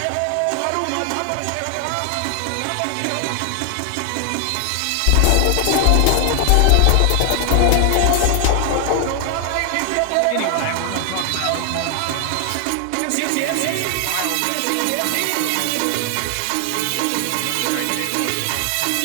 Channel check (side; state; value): both; different; correlation 0.00